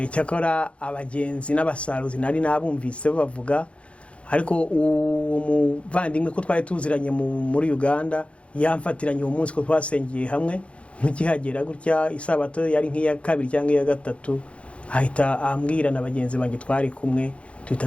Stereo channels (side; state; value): right; late; 0.061 ms